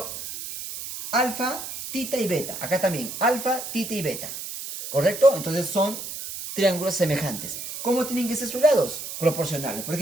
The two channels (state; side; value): noise; right; hiss, 8 dB below the sound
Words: alfa, tita y beta. Acá también, alfa, tita y beta. ¿Correcto? Entonces son triángulos semejantes. ¿Cómo tienen que ser sus lados? Proporcionales. Por